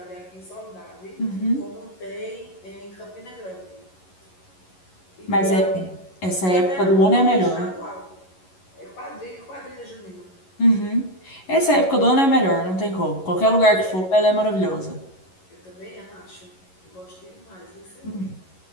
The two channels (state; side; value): late; right; 11 ms